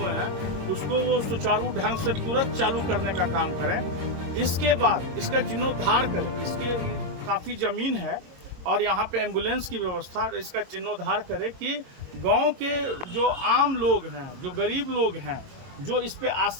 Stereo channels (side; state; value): left; late; 22 ms